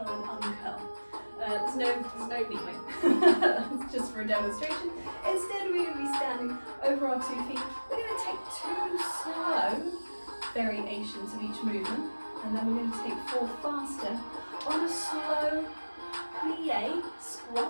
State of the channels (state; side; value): inverted; both; correlation -1.00